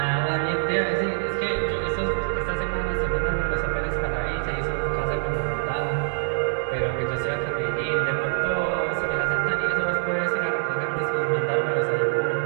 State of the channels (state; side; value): silent; left; digital silence